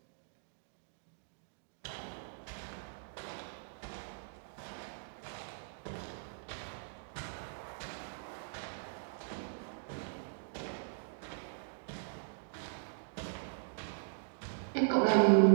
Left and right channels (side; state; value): left; silent; digital silence